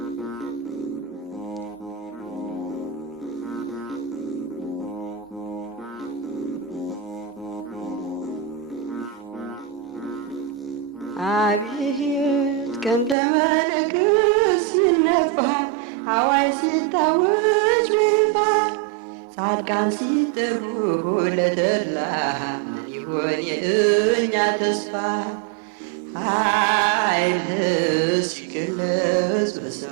አቤት ቀንደ መለከት ሲነፋ አዋጅ ሲታወጅ በይፋ ጻድቃን ሲጠሩ ለተድላ ምን ይሆን የእኛ ተስፋ ኃይልህ ሲገለጽ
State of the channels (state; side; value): drops out; left; at 13.2 s